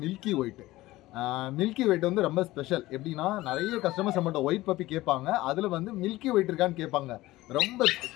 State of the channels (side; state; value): right; quieter; 17.8 dB